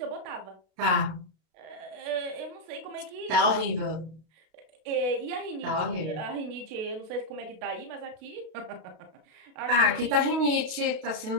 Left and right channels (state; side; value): late; left; 32 ms